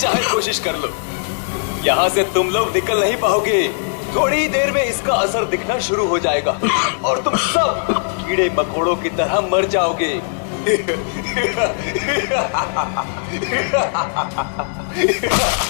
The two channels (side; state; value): right; silent; digital silence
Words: कोशिश कर लो। यहां से तुम लोग निकल नहीं पाओगे, थोड़ी ही देर में इसका असर दिखना शुरू हो जाएगा और तुम सब कीड़े मकोड़ों की तरह मर जाओगे।